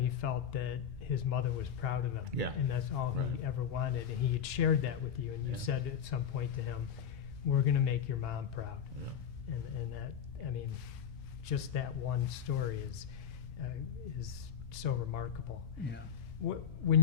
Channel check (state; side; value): quieter; right; 8.1 dB